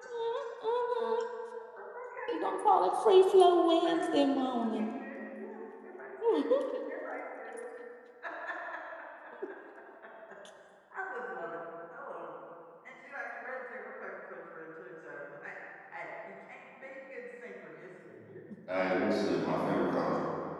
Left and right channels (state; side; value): identical; both; correlation 1.00